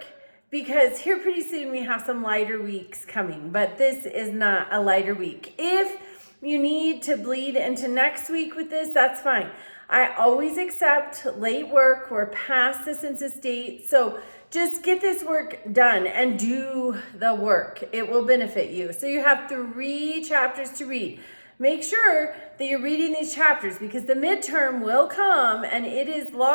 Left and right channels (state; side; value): inverted; both; correlation -1.00